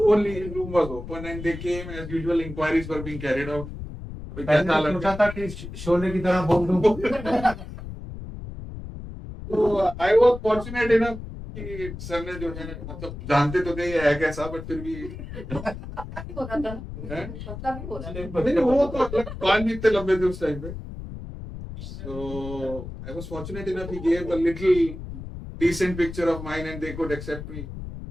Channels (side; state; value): left; noise; rumble, 10 dB below the sound